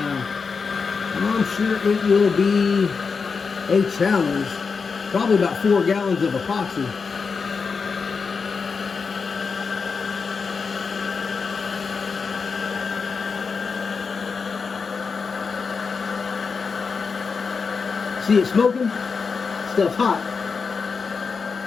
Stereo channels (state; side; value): quieter; right; 5.2 dB